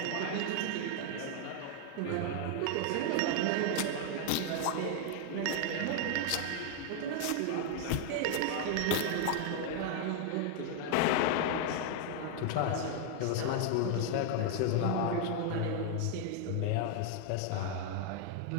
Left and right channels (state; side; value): different; both; correlation 0.00